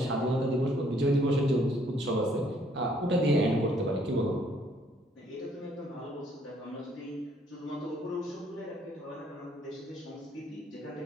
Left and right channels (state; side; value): normal; both; correlation 0.65